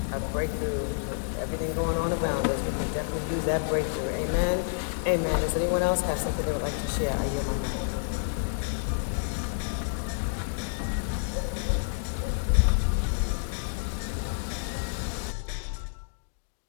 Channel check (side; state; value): right; silent; digital silence